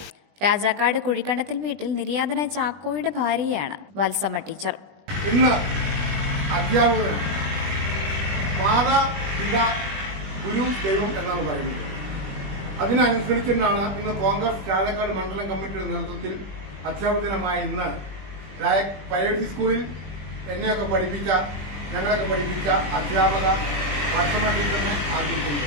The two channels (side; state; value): left; late; 20 ms